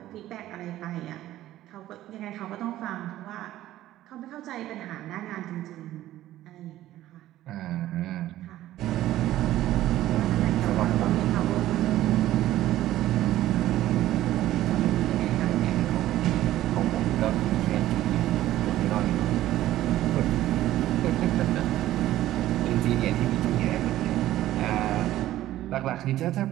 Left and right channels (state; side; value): quieter; left; 14.2 dB